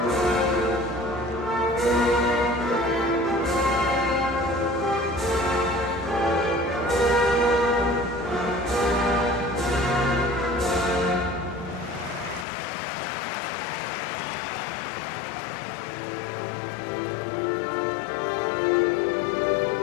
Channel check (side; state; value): right; drops out; at 12.5 s